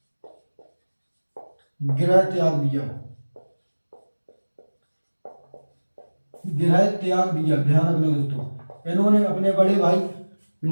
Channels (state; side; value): inverted; both; correlation -1.00